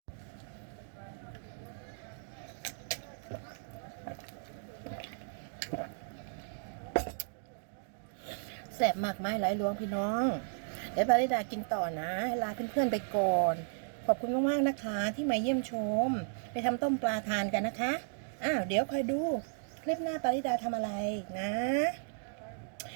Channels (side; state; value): left; silent; digital silence